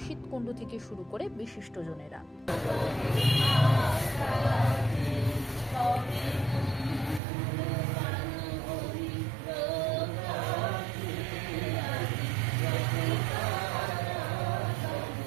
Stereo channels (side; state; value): left; drops out; at 7.2 s